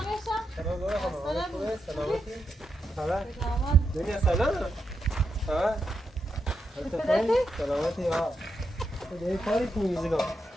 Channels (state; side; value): normal; both; correlation 0.84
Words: دنیا سلام سلامتی ها دیگه کاری تو میزگا